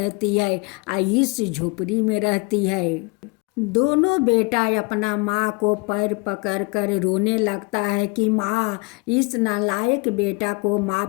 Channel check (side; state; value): right; quieter; 30.1 dB